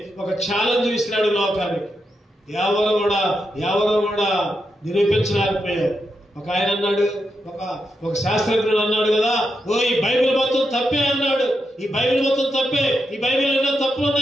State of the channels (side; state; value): both; normal; correlation 0.84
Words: ఒక ఛాలెంజ్ ఇస్తున్నాడు లోకానికి. ఎవరు కూడా నిరూపించలేకపోయారు. ఒక ఆయన అన్నాడు, ఒక శాస్త్రజ్ఞుడు అన్నాడు కదా, ఈ బైబిల్ మొత్తం తప్పే అన్నాడు. ఈ బైబిల్ మొత్తం తప్పే, ఈ బైబిల్ ఎన్నో తప్పులు